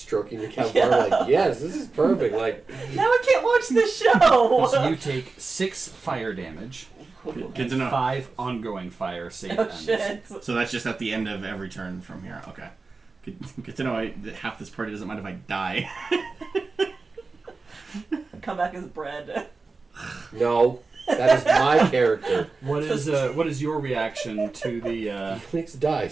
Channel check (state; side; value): quieter; left; 4.0 dB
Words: your campfire like, yes, this is perfect. Like, Now we can't watch the show. So you take 6 fire damage, Good to know. 5 ongoing fire save Oh ends. shit. So that's just at the end of every turn from here. Okay. Good to know that half this party doesn't mind if I die. Come back as bread. No, that is my character. What is your reaction to the Felix